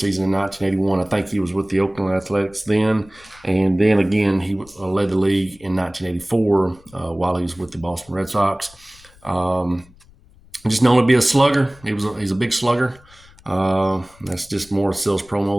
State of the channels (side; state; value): left; noise; rumble, 26 dB below the sound